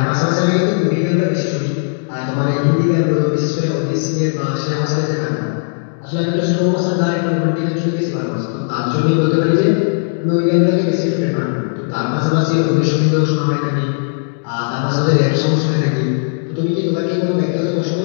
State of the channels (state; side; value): silent; right; digital silence